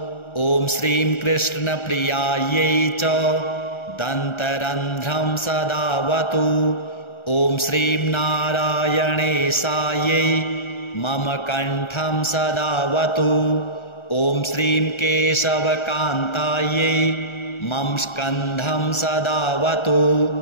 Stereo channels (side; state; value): right; late; 1.3 ms